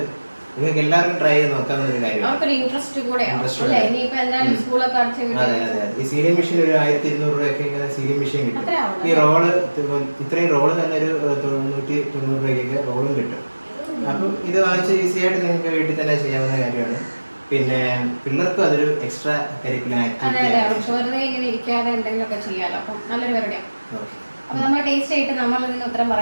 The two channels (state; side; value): inverted; both; correlation -1.00